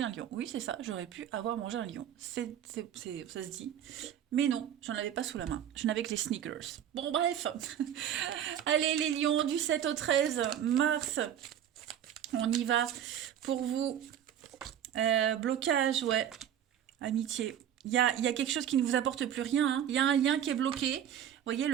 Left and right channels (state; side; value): quieter; left; 10.0 dB